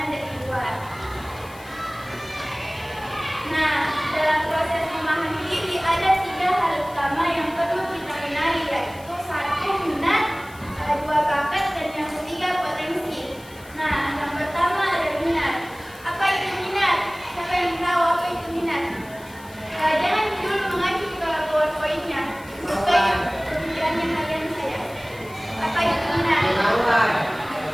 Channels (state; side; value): noise; left; hiss, 22 dB below the sound